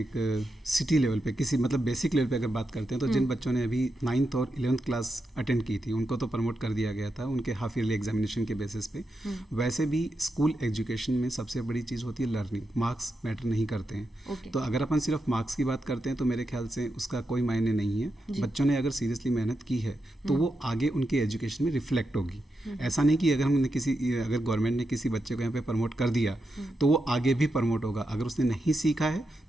सिटी लेवल पे किसी मतलब बेसिक लेवल पे अगर बात करते हैं तो जिन बच्चों ने अभी 9th और 11th क्लास अटेंड की थी उनको तो प्रमोट कर दिया गया था उनके हाफ ईयरली एग्जामिनेशन के बेसिस पे। वैसे भी स्कूल एजुकेशन में सबसे बड़ी चीज़ होती है लर्निंग, मार्क्स मैटर नहीं करते हैं। तो अगर अपन सिर्फ मार्क्स की बात करते हैं तो मेरे ख्याल से उसका कोई मायने नहीं है। बच्चों ने अगर सीरियसली मेहनत की है तो वो आगे उनके एजुकेशन में रिफ्लेक्ट होगी। ऐसा नहीं कि अगर गवर्नमेंट ने किसी बच्चे को यहाँ पे प्रमोट कर दिया तो वो आगे भी प्रमोट होगा, अगर उसने नहीं सीखा है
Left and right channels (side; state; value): both; normal; correlation 0.87